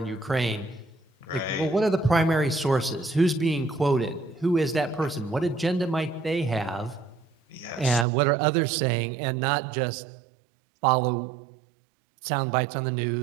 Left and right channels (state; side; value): drops out; left; at 8.1 s